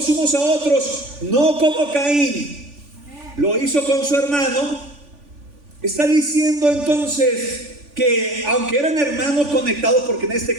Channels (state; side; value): late; left; 3.5 ms